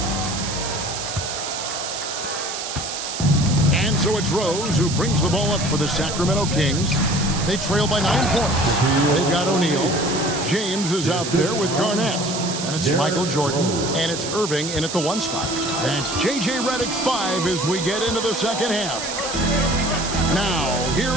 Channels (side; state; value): right; noise; hiss, 6 dB below the sound